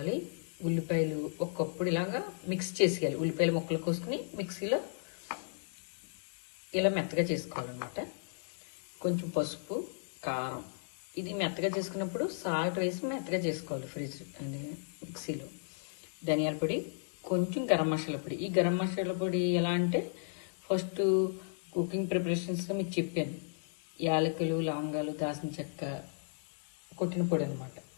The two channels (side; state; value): right; silent; 55 dB below the other